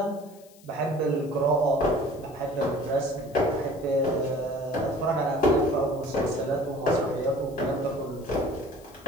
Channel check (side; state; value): left; noise; hiss, 26 dB below the sound